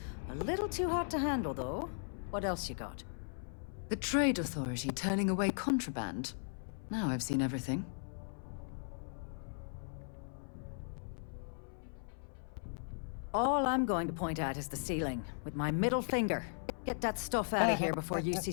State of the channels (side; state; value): right; silent; 53 dB below the other